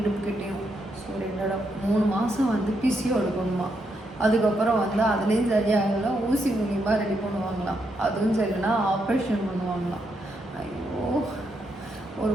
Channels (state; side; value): normal; both; correlation 0.79